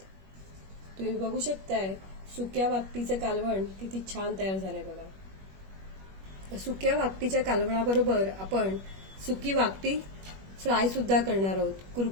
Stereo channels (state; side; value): late; left; 21 ms